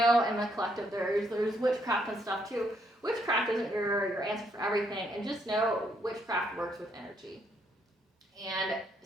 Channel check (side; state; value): both; normal; correlation 0.73